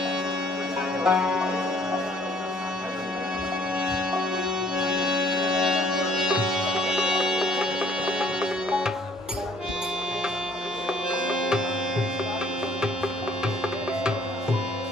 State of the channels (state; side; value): normal; both; correlation 0.60